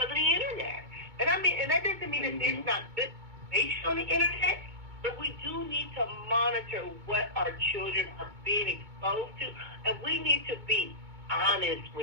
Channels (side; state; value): left; late; 2.2 ms